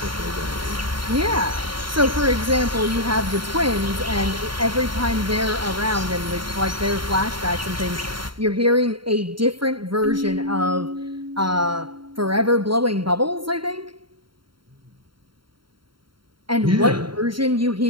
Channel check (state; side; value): late; left; 0.73 ms